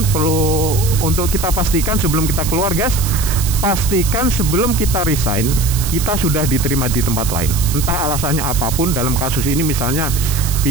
perlu untuk kita pastikan sebelum kita keluar guys, pastikan sebelum kita resign kita sudah diterima di tempat lain, entah alasannya apapun. Dalam kasus ini misalnya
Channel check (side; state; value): right; noise; hiss, 7 dB below the sound